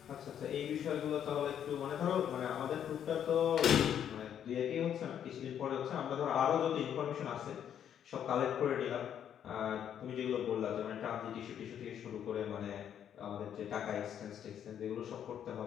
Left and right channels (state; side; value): quieter; right; 9.3 dB